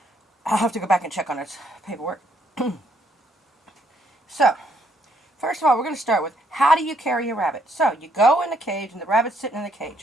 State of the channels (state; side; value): normal; both; correlation 0.70